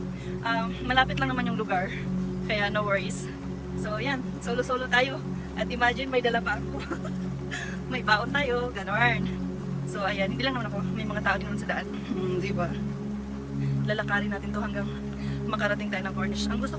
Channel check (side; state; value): both; identical; correlation 1.00